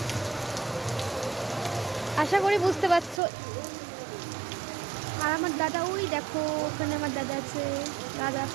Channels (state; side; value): drops out; left; at 3.2 s